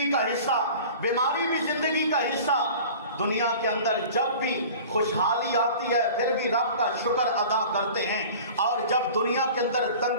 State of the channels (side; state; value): both; inverted; correlation -0.41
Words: کا حصہ، بیماری بھی زندگی کا حصہ۔ دنیا کے اندر جب بھی خوشحالی آتی ہے پھر بھی رب کا شکر ادا کرتے ہیں، اور جب دنیا کے اندر